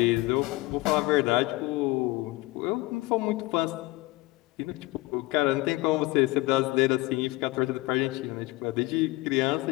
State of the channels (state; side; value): quieter; right; 20.6 dB